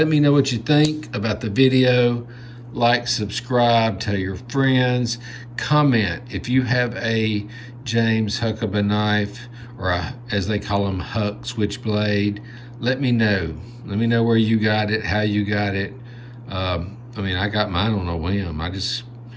me know what you think about the video. Like, subscribe, tell your friends, comment if you have a James Huckeba knife, or as they call them, Huck switchblade. Let me know. Let me know where you got it, how you got it. I mean, I got mine on a whim. I just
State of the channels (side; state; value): both; identical; correlation 1.00